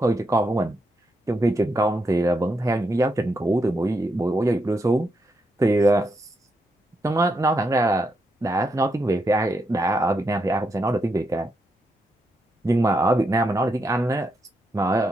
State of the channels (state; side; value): normal; both; correlation 0.81